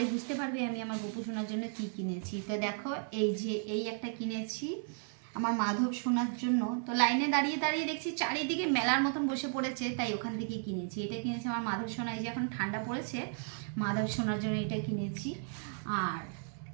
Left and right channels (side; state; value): left; silent; 55 dB below the other